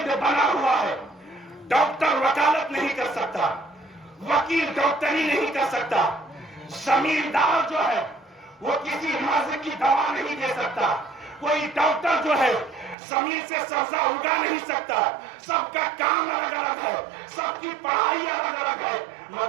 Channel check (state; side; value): drops out; left; at 13.0 s